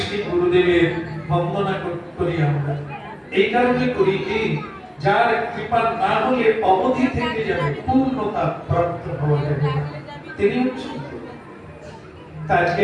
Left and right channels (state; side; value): identical; both; correlation 1.00